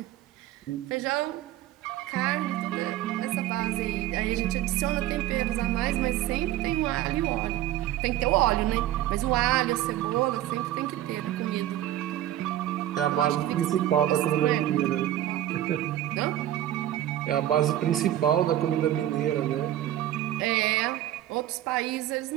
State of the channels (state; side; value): quieter; left; 13.0 dB